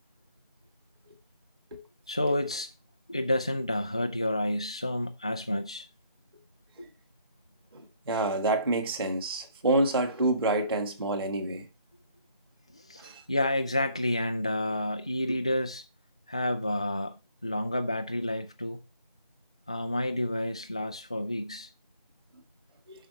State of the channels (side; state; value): both; inverted; correlation -0.67